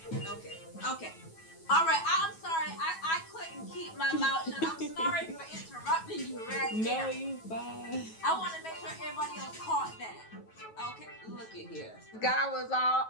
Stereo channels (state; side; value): late; right; 9.2 ms